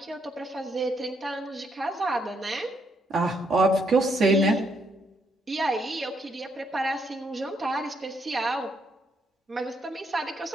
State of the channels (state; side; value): normal; both; correlation 0.74